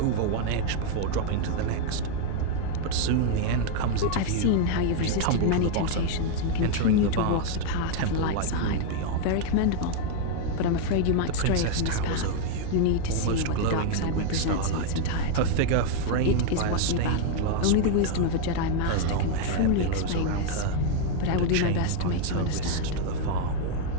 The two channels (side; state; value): both; different; correlation 0.00